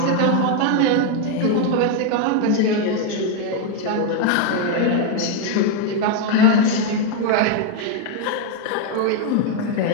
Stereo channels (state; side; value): different; both; correlation 0.01